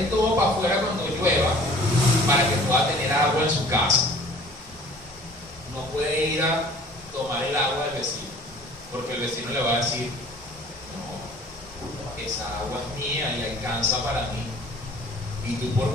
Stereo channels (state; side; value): normal; both; correlation 0.49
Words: todo para afuera cuando llueva para que pueda tener agua en su casa. No puede ir a tomar el agua del vecino, porque el vecino le va a decir, no, esa agua es mía y alcanza para mí. ¿Y tú